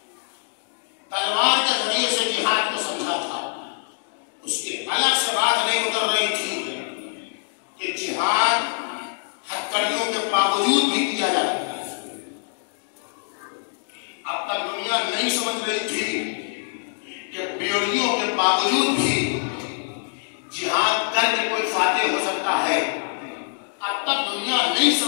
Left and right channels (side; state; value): right; silent; 62 dB below the other